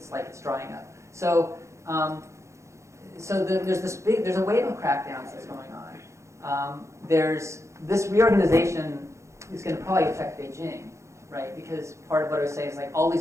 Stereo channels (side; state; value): left; late; 0.14 ms